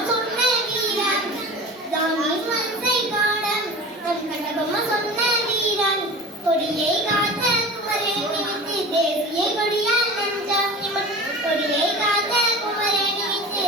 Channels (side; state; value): both; normal; correlation 0.35